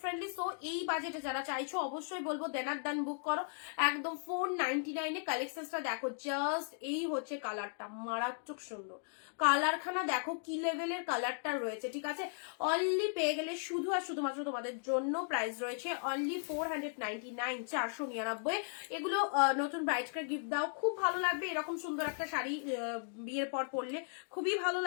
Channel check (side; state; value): right; silent; digital silence